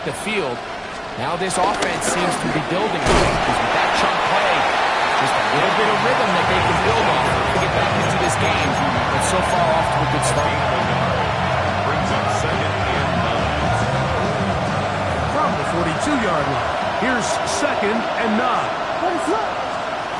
the field. Now this offense seems to be building because with that chunk play, just a little bit of rhythm that they can build off to get back into this game. But so far off to a good start. Brings up second and 9. From the 42-yard line, here's second and 9.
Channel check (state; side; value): identical; both; correlation 1.00